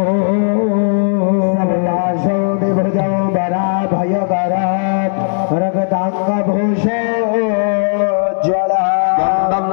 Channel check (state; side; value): silent; right; digital silence